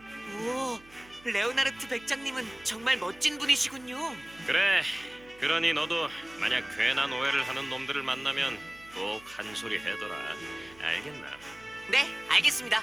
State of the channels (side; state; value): right; noise; hum, 25 dB below the sound